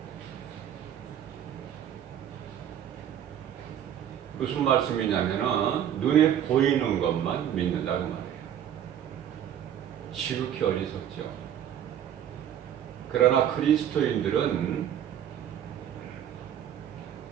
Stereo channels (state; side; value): quieter; left; 10.0 dB